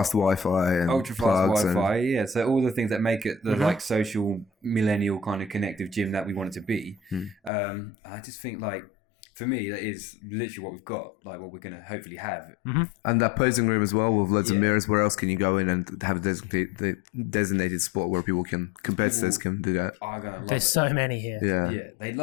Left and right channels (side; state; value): right; drops out; at 7.5 s